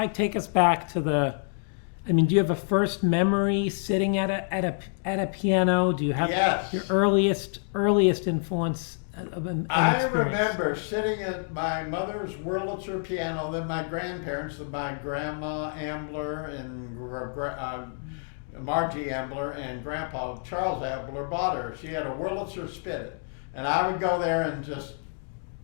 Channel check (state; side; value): silent; right; 60 dB below the other